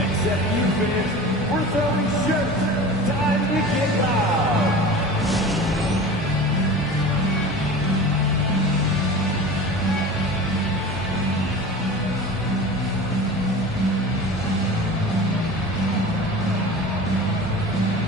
you finish, we're throwing shirts. Time to get loud.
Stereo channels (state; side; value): normal; both; correlation 0.36